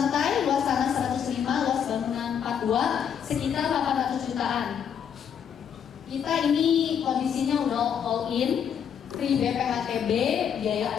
luas tanah 105, luas bangunan 42, sekitar 800 jutaan. Kita ini kondisinya udah all in, free BPHTB,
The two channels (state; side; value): quieter; right; 8.1 dB